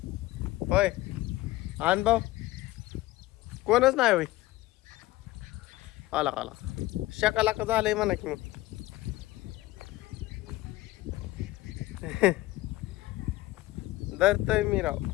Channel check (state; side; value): quieter; right; 17.6 dB